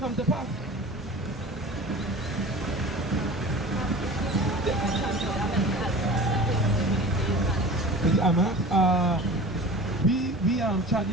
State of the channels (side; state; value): both; normal; correlation 0.38